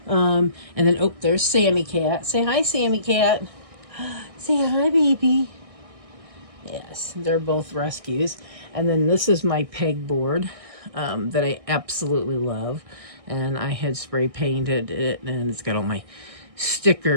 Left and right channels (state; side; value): late; left; 1.6 ms